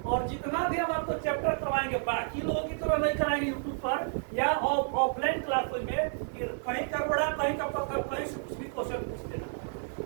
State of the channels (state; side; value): silent; left; 57 dB below the other